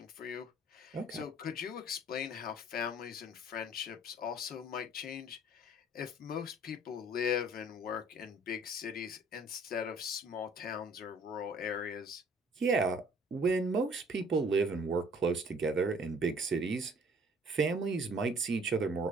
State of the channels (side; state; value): both; normal; correlation 0.55